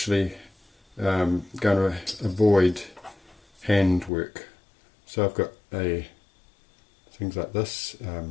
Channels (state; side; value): drops out; right; at 4.1 s